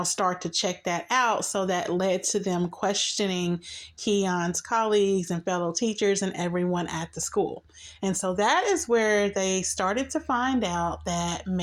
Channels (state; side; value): identical; both; correlation 1.00